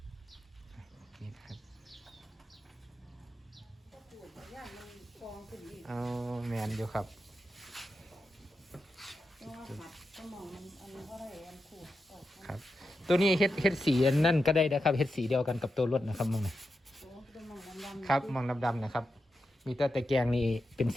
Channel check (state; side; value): normal; both; correlation 0.88